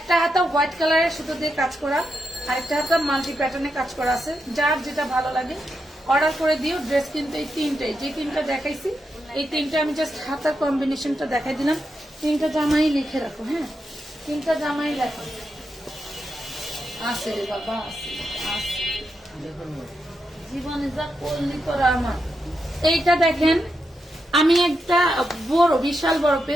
হাতা হোয়াইট কালারের সুতো দিয়ে কাজ করা, আরেকটা হাতা মাল্টি প্যাটার্নে কাজ করা আছে। যার যেটা ভালো লাগে অর্ডার করে দিও। ড্রেস কিন্তু এই তিনটাই, যে তিনটা দেখাইছি এই তিনটা আমি জাস্ট হাতার কম্বিনেশনটা দেখাই দিলাম। তিনটা জামাই লিখে রাখো। হ্যাঁ, তিনটা জামাই লেখো। আছে রে বাবা, আছে আছে, জীবনে যা করলি তোরা আমার। এইটা দেখেন, আমি একটা বড় বিশাল বড়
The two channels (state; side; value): normal; both; correlation 0.85